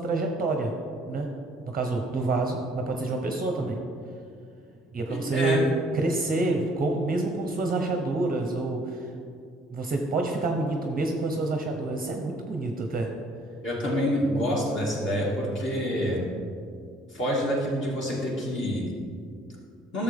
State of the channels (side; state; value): both; normal; correlation 0.61